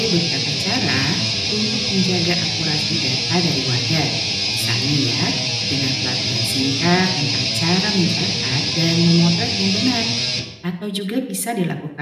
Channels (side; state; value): both; identical; correlation 1.00